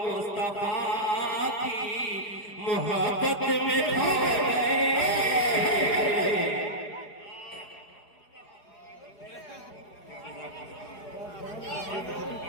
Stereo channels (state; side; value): late; right; 4.8 ms